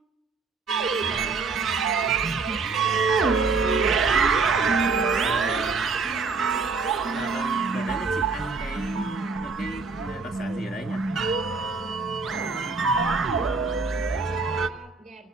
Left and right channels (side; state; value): left; quieter; 4.4 dB